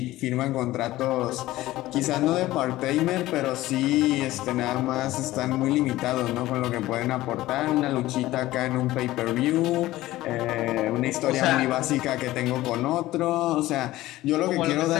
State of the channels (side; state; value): right; quieter; 16.6 dB